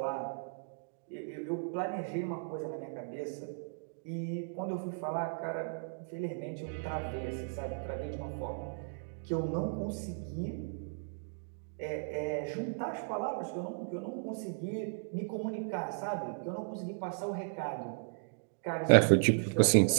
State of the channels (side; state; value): left; silent; digital silence